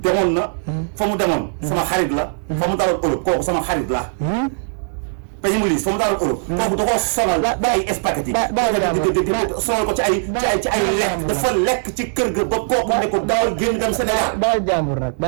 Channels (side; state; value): left; silent; digital silence